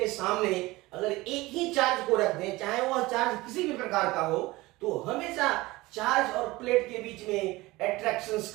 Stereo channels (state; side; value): quieter; left; 20.4 dB